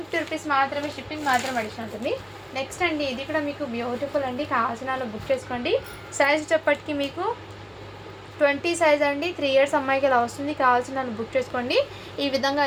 రూపీస్ మాత్రమే, షిప్పింగ్ మాత్రం అడిషన్ ఉంటుంది. నెక్స్ట్ అండి ఇది కూడా మీకు బ్యూటిఫుల్ అండి. కావాల్సిన బుక్ చేసుకోండి. సైజ్ చెప్పటికి మీకు 20 సైజ్ అండి. 3 ఇయర్స్ అమ్మాయికి ఇలా వస్తుంది. కావాల్సిన బుక్ చేసుకోండి. ఈ విధంగా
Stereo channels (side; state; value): both; identical; correlation 1.00